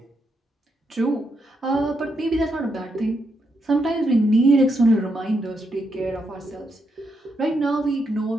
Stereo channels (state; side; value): normal; both; correlation 0.81